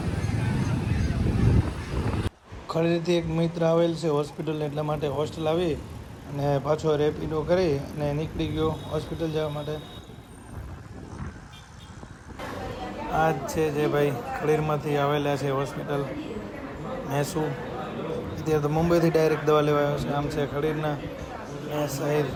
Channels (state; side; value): identical; both; correlation 1.00